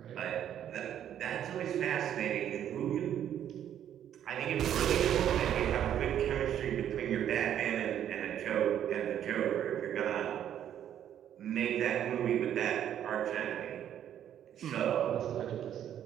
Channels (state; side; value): quieter; left; 10.3 dB